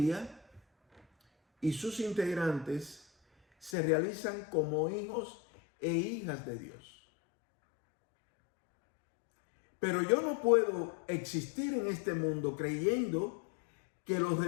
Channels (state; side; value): drops out; right; at 3.8 s